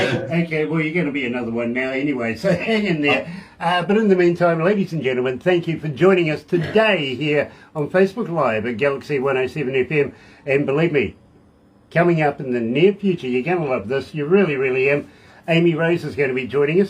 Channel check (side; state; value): both; identical; correlation 1.00